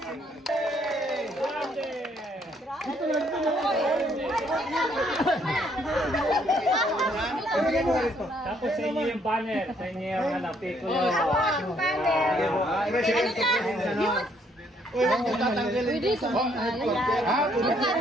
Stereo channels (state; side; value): normal; both; correlation 0.68